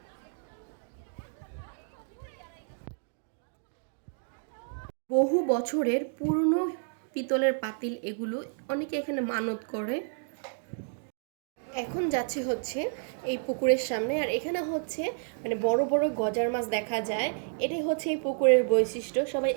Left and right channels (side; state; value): left; silent; 57 dB below the other